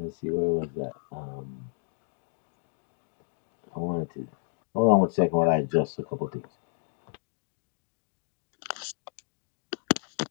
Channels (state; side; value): silent; right; digital silence